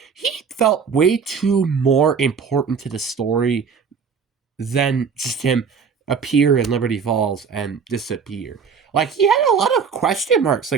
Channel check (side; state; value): left; quieter; 6.2 dB